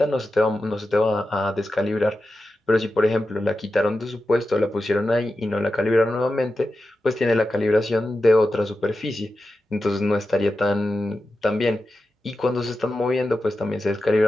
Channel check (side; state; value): both; normal; correlation 0.91